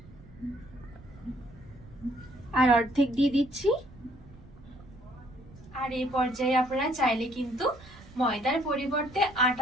আর অর্ধেক দিয়ে দিচ্ছি। আর এই পর্যায়ে আপনারা চাইলে কিন্তু ময়দার পরিবর্তে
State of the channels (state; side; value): noise; right; rumble, 21 dB below the sound